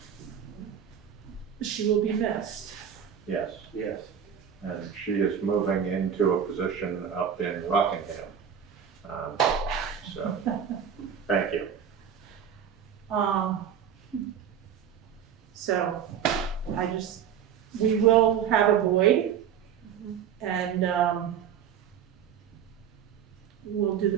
she will be missed. Yes, Yes. and she is moving into a position up in Rockingham. So, thank you. So we will have a void, and we'll do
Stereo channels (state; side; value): quieter; left; 8.4 dB